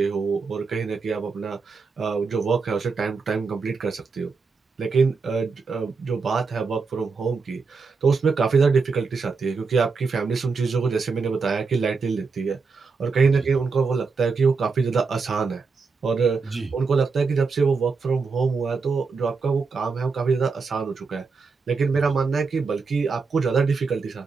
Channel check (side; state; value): left; quieter; 4.7 dB